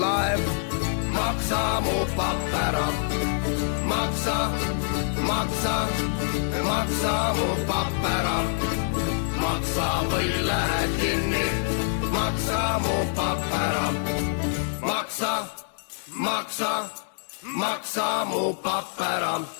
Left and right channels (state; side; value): silent; right; 60 dB below the other